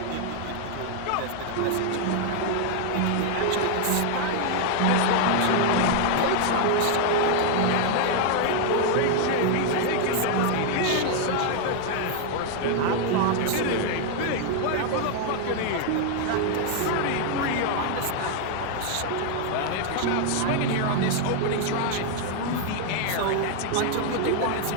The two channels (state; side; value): different; both; correlation 0.00